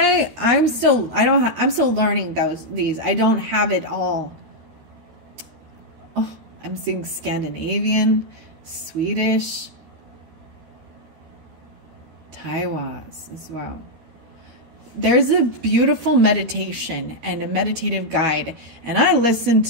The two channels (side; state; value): left; late; 13 ms